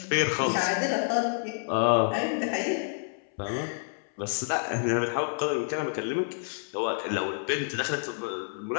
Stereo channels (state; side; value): silent; right; 59 dB below the other